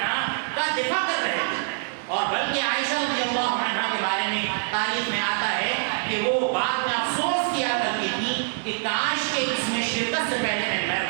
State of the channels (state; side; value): silent; left; digital silence